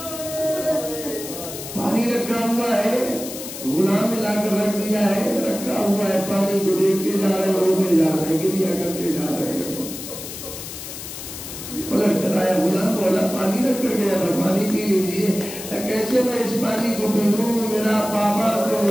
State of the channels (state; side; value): noise; left; hiss, 10 dB below the sound